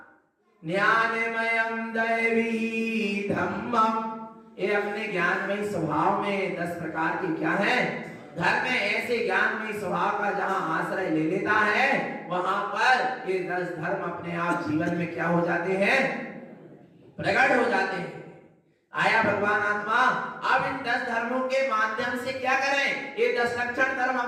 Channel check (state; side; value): identical; both; correlation 1.00